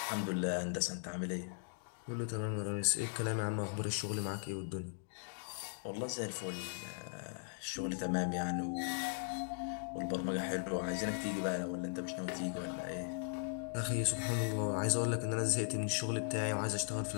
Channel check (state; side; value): silent; right; digital silence